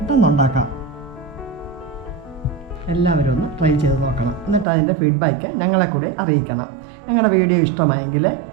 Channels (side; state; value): left; drops out; at 4.7 s